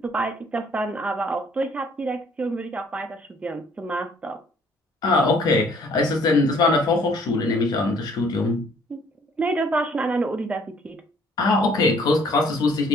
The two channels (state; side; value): normal; both; correlation 0.60